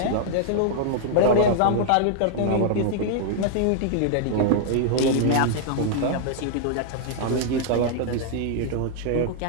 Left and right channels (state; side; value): different; both; correlation -0.01